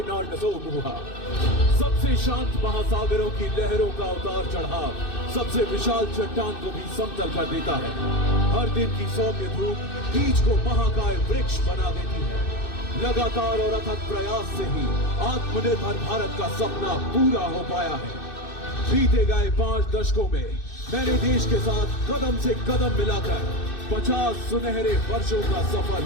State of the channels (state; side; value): late; right; 2.6 ms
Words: नार्नसो मुहा। सबसे शांत महासागरों की लहरों का उतार चढ़ाव सबसे विशाल चट्टान को भी समतल कर देता है। हर दिन की सौम्य धूप बीज को महाकाय वृक्ष बना देती है। लगातार और अथक प्रयास से ही आत्मनिर्भर भारत का सपना पूरा हो पाया है। बीते गए 5 दशकों में मैंने देश के साथ कदम से कदम मिलाकर 50 सुनहरे वर्षों का सफर